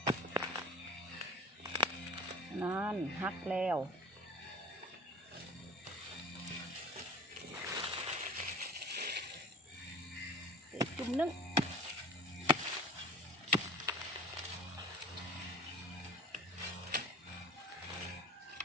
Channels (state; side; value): normal; both; correlation 0.39